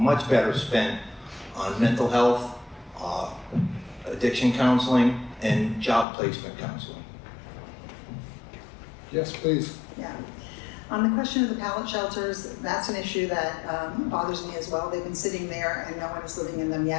better spent on mental health, addiction counseling, and job placement counseling. Yes, please. Yeah. On the question of the pallet shelters, that's an issue that bothers me as well. They've been sitting there and no one is living in them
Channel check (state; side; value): drops out; right; at 6.1 s